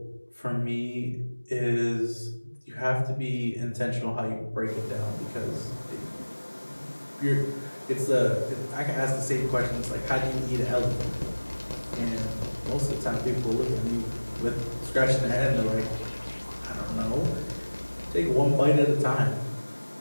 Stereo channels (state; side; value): inverted; both; correlation -1.00